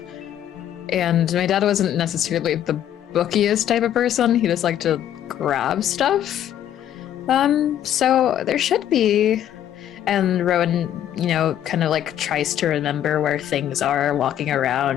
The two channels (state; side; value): quieter; right; 10.9 dB